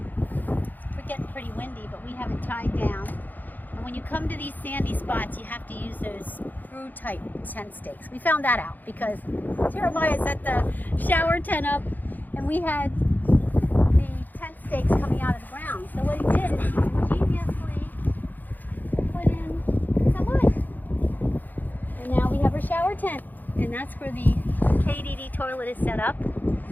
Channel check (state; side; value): late; right; 0.085 ms